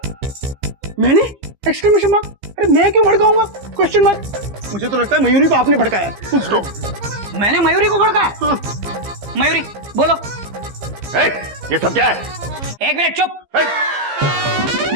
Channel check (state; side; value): late; left; 15 ms